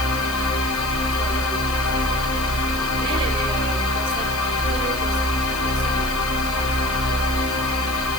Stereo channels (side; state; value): right; noise; hiss, 12 dB below the sound